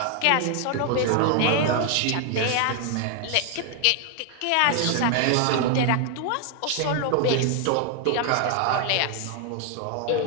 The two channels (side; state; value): both; different; correlation 0.00